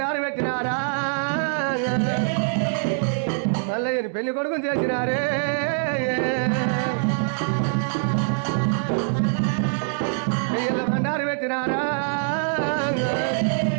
పెట్టినారా. మల్లయ్యని పెళ్లి కొడుకుని చేసినారే. బండారు పెట్టినారా.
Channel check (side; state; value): left; silent; digital silence